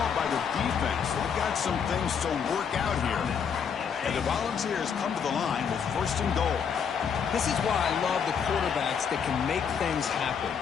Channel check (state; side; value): quieter; right; 7.0 dB